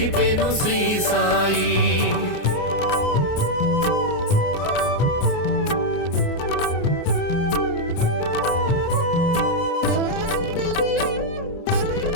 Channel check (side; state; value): right; late; 29 ms